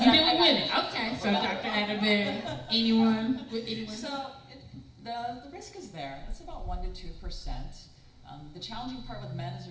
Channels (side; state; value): both; identical; correlation 1.00